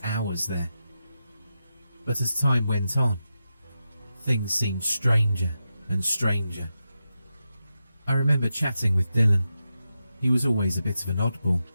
hours there. But as time went on, things seemed stranger and stranger. I remember chatting with Dylan. He was always a bit of an oddball.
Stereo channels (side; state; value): both; inverted; correlation -0.88